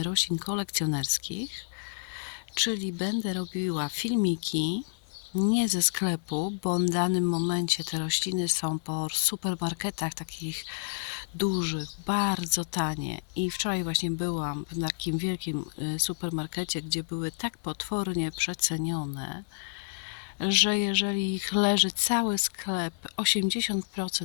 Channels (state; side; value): silent; right; 58 dB below the other